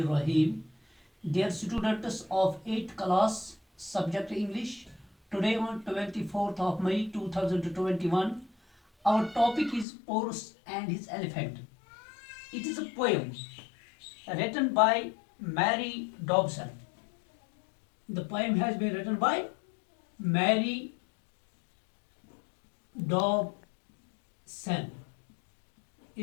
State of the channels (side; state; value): right; drops out; at 9.9 s